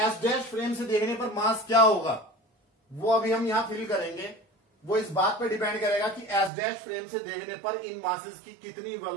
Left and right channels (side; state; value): left; drops out; at 6.5 s